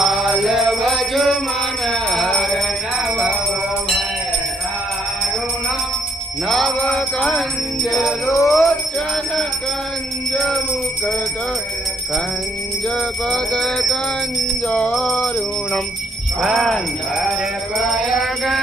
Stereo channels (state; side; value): normal; both; correlation 0.70